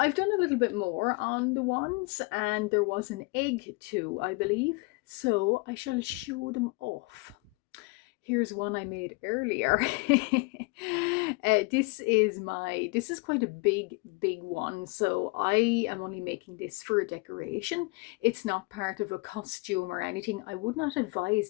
done a little bit more on the wands and there was an egg too, I believe. So I shall show them off. Here's one I made earlier. This is quite a big one. So I am only making this for a decoration. It's not part of a costume or anything. I would not advise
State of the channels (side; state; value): right; quieter; 27.1 dB